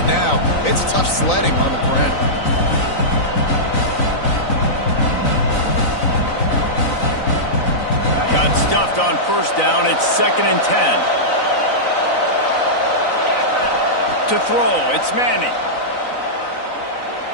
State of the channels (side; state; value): right; late; 3.9 ms